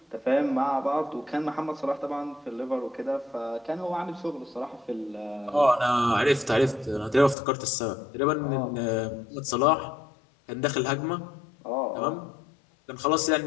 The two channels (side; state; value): right; drops out; at 7.4 s